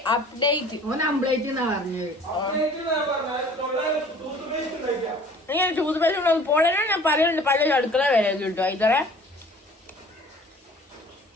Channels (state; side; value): normal; both; correlation 0.49